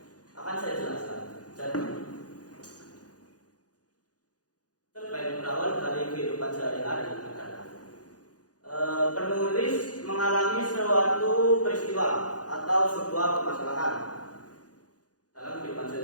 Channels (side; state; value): right; late; 0.68 ms